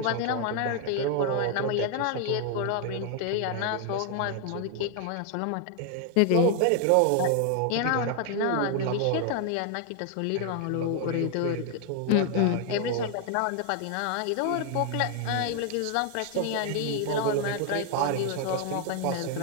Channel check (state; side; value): different; both; correlation 0.00